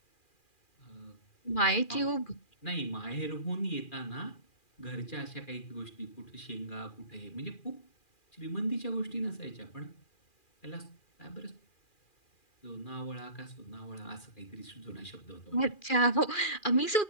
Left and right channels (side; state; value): right; late; 2.4 ms